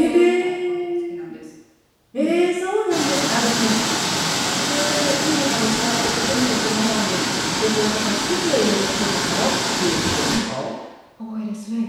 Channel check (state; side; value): identical; both; correlation 1.00